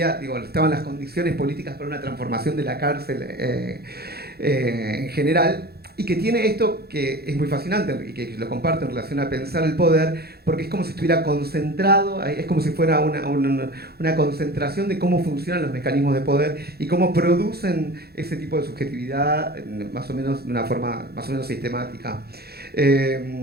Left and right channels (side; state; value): left; late; 0.46 ms